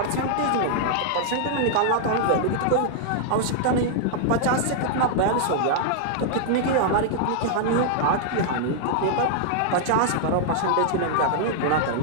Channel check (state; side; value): different; both; correlation -0.01